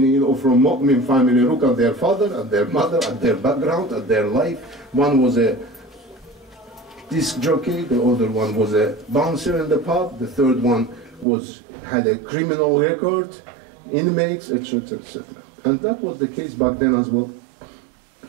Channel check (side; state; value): left; drops out; at 11.2 s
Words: or from mu'min family. Look at their father, at their mother, at their background, at their life. One was a disc jockey, the other one was a bouncer in the pub, the third one had a criminal record, inmates, etc., etc. And that was the case back then as well.